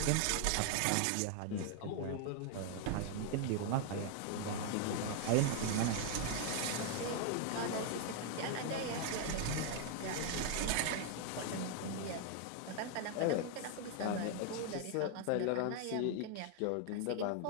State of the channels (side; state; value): both; different; correlation 0.00